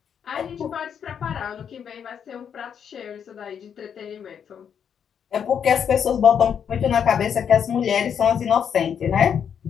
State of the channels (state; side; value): quieter; right; 7.9 dB